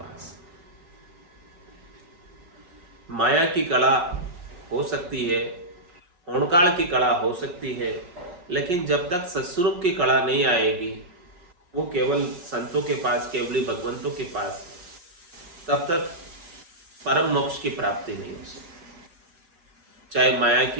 माया की कला हो सकती है, होनकाल की कला हो सकती है, लेकिन जब तक सत्स्वरूप की कला नहीं आएगी, वो केवल संतों के पास, केवली भगवंतों के पास, तब तक परम मोक्ष की प्राप्ति नहीं हो सकती। चाहे माया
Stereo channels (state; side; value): late; left; 5.4 ms